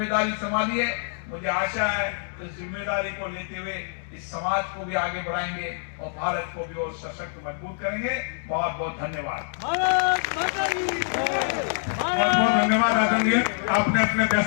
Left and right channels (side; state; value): right; silent; digital silence